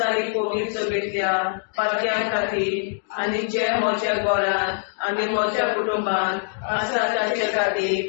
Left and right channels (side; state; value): right; silent; digital silence